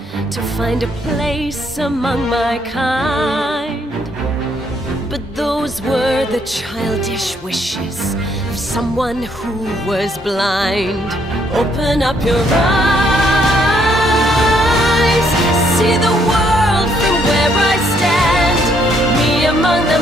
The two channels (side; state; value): both; normal; correlation 0.70